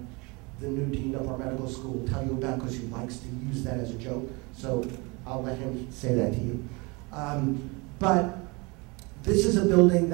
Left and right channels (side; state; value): left; quieter; 27.4 dB